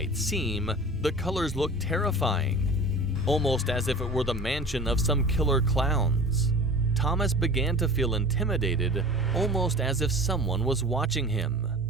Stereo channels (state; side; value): normal; both; correlation 0.39